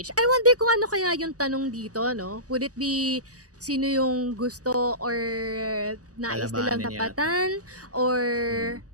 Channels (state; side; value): late; left; 0.66 ms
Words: I wonder kung ano kaya yung tanong dito, no? Would it be sino yung gusto or nais nilang Kalabanin yata. tapatan or